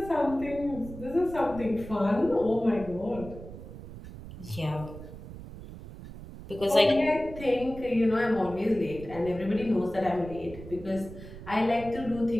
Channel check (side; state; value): right; noise; rumble, 13 dB below the sound